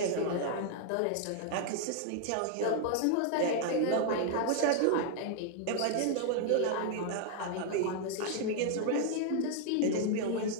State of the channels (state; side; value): different; both; correlation 0.00